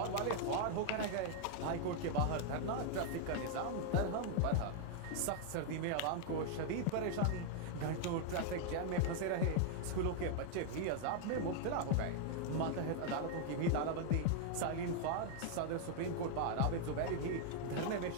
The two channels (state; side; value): different; both; correlation 0.00